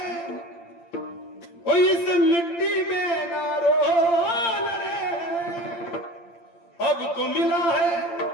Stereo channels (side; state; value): right; late; 8.7 ms